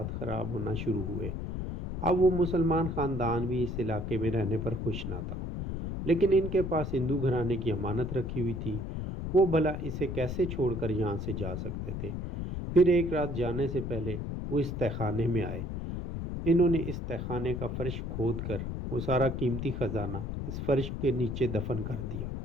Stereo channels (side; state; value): left; noise; rumble, 4 dB below the sound